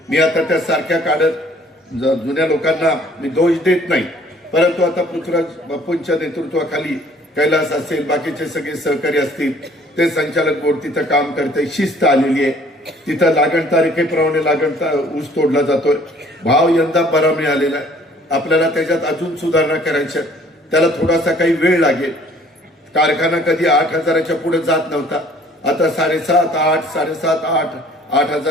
मी आता त्या सारख्या काढत जुन्या लोकांना मी दोष देत नाही, परंतु आता पृथ्वीराज बापूंच्या नेतृत्वाखाली कैलास असेल, बाकीचे सगळे सहकारी असतील, ते संचालक बोर्ड तिथं काम करते, शिस्त आलेली आहे. तिथं लागण तारखेप्रमाणे ऊस तोडला जातोय. भाव यंदा बरा मिळालेला आहे. आपल्याला त्याच्यात अजून सुधारणा करायच्या, त्याला थोडासा काही वेळ लागेल. कारखाना कधी 8,000च्या पुढे जात नव्हता, आता 7,500, 8, 7,500,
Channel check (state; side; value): normal; both; correlation 0.56